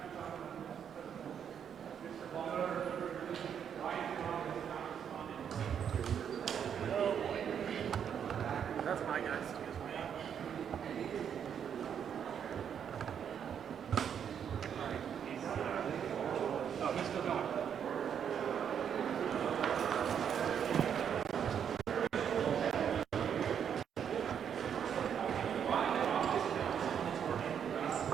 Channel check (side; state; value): left; quieter; 8.2 dB